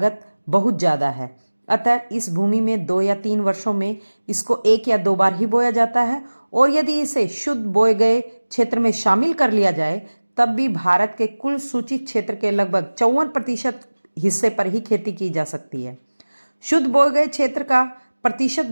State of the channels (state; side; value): inverted; both; correlation -1.00